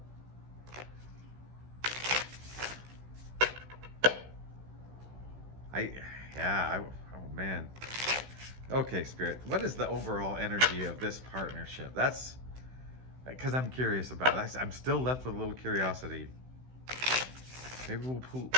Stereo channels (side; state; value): left; late; 16 ms